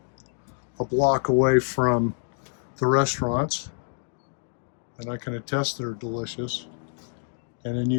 a block away from the restaurants, and I can attest they're delicious. And then you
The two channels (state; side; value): silent; right; digital silence